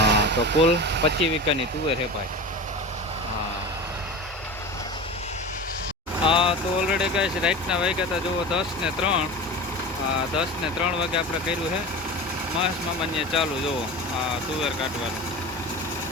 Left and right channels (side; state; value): both; normal; correlation 0.30